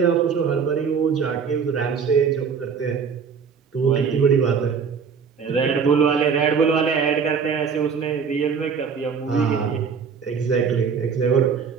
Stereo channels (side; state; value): left; quieter; 6.2 dB